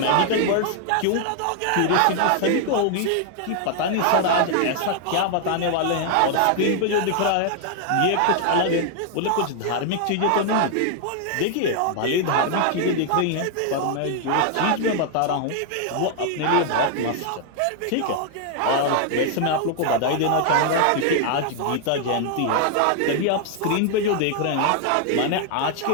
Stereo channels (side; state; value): both; different; correlation 0.00